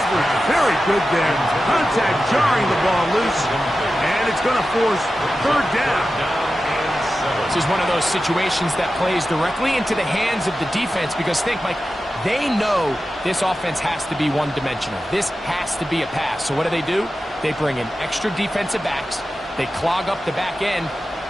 very good there. Contact jarring the ball loose, and it's going to force third down. This is one of those situations that plays directly into the hands of the defense because think, Mike, they know this offense has to be one-dimensional. This has to be a pass. So what do? They bring in extra defensive backs. They clog up the back end.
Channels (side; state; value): both; normal; correlation 0.93